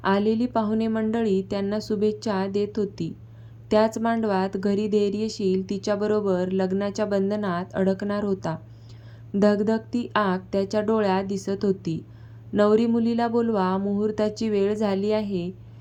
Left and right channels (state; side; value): identical; both; correlation 1.00